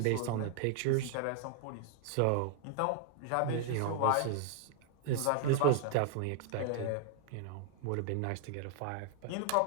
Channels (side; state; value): both; different; correlation 0.00